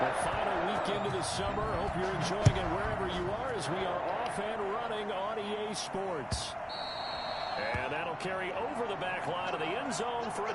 final week into the summer. Hope you're enjoying it wherever you are as we are off and running on EA Sports. And that'll carry over the back line of the end zone for a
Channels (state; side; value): identical; both; correlation 1.00